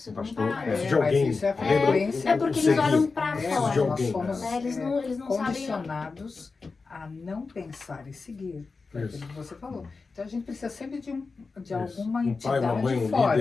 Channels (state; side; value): quieter; right; 4.3 dB